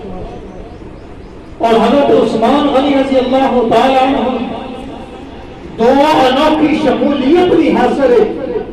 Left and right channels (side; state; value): both; identical; correlation 1.00